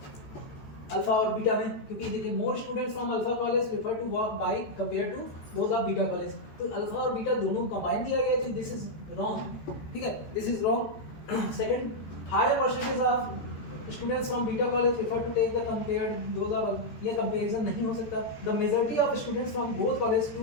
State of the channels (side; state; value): right; late; 14 ms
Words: अल्फा और बीटा में, क्योंकि देखिए more students from alpha college prefer to walk bike compare to those of beta college, तो अल्फा और बीटा दोनों कंबाइन दिया गया है, दिस इज रॉन्ग, ठीक है this is wrong. Second, higher percentage of students from beta college prefer to take the compared those of, ये comparison नहीं हो सकता। The majority of students from both college to